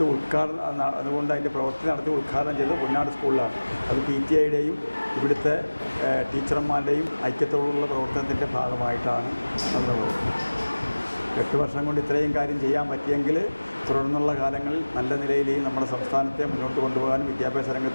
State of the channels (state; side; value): inverted; both; correlation -1.00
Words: ഉദ്ഘാടനം, അതുകൊണ്ട് അതിൻ്റെ പ്രവൃത്തി നടത്തി ഉദ്ഘാടനം ചെയ്തത് പൊന്നാട് സ്കൂളിലാണ്. അത് PTA-യുടെയും ഇവിടുത്തെ ടീച്ചർമാരുടെയും ഐക്യത്തോടുള്ള പ്രവർത്തനത്തിൻ്റെ ഭാഗമായിട്ടാണ് എന്നുള്ളത്. 8 വർഷം കൊണ്ട് ഇത്രയും കാര്യം ചെയ്യാൻ പറ്റിയെങ്കിൽ തുടർന്നുള്ള കാലങ്ങളിൽ നല്ല നിലയിൽ നമ്മുടെ സംസ്ഥാനത്തെ മുന്നോട്ട് കൊണ്ടുപോകാനും വിദ്യാഭ്യാസ